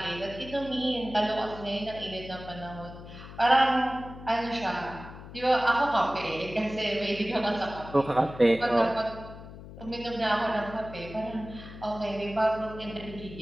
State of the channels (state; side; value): noise; left; hum, 14 dB below the sound